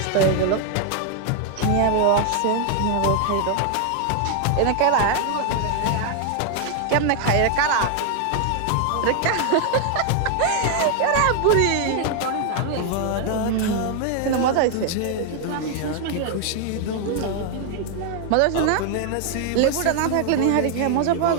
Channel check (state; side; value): different; both; correlation 0.00